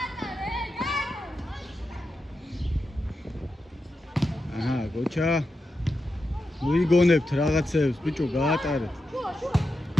კოჩა, მოიგონებთ რაღაცებს, ბიჭო, გაატარეთ.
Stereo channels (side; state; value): both; normal; correlation 0.88